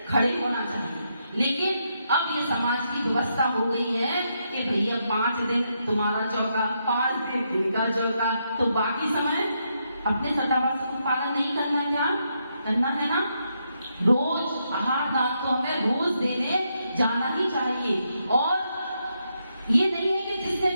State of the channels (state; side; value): inverted; both; correlation -0.80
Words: खड़े होना चाहिए। लेकिन अब ये समाज की व्यवस्था हो गई है कि भैया 5 दिन तुम्हारा चौका, 5 दिन इनका चौका, तो बाकी समय अपने सदावास का पालन नहीं करना, क्या करना है ना? रोज आहार दान तो हमें रोज देने जाना ही चाहिए। और ये नहीं है कि जिसने